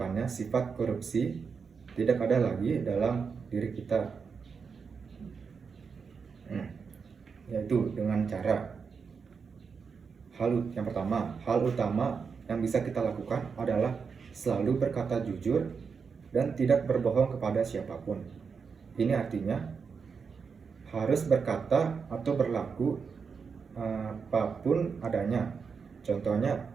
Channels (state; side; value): quieter; left; 5.7 dB